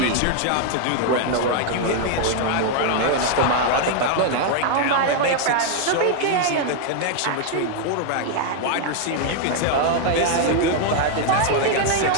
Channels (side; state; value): both; different; correlation 0.00